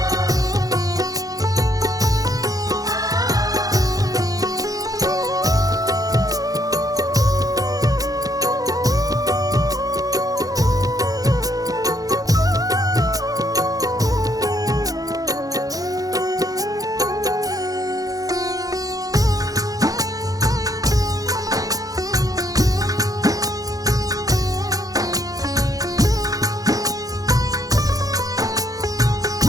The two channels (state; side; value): late; left; 0.17 ms